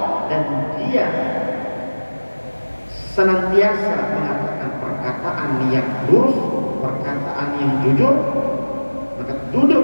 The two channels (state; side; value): inverted; both; correlation -1.00